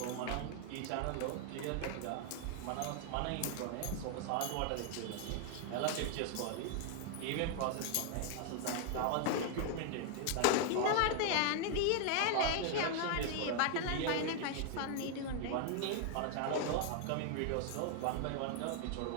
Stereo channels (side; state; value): both; different; correlation 0.00